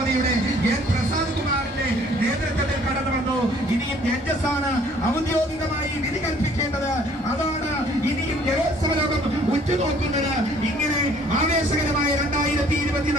എൻ പ്രസാദ് കുമാറിന്റെ നേതൃത്വത്തിൽ കടന്നു വന്നു. ഇനിയും ജഡ്ജസാണ് ഔദ്യോഗികമായി വിധി കൽപ്പിക്കേണ്ടത്. അതാണ് ഇനിയും ജലോത്സവ ലോകം ഉറ്റുനോക്കുന്നത്. ഇങ്ങനെ ആവേശകരമായ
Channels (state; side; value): normal; both; correlation 0.58